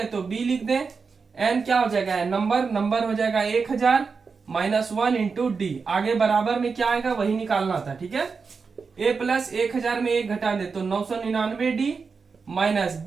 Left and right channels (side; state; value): left; quieter; 5.1 dB